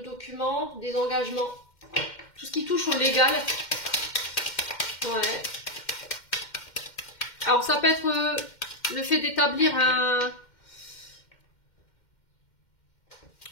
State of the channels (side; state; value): right; late; 2.1 ms